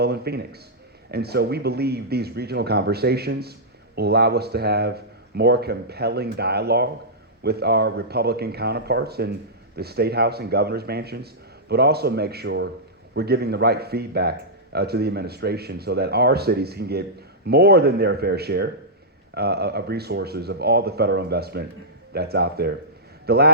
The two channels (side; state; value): both; normal; correlation -0.13